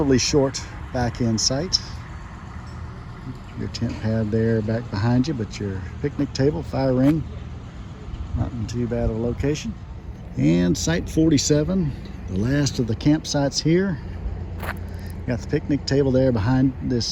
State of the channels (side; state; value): both; identical; correlation 1.00